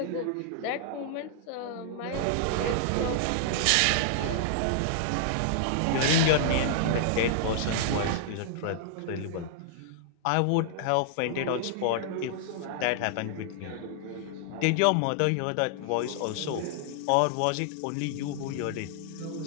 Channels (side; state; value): both; different; correlation -0.01